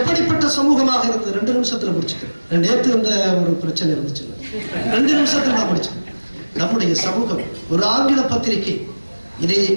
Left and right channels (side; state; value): both; inverted; correlation -1.00